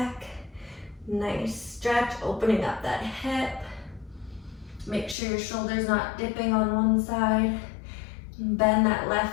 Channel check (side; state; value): right; drops out; at 5.2 s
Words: Nice stretch, opening up that hip. Make sure your shoulder's not dipping on one side. Bend that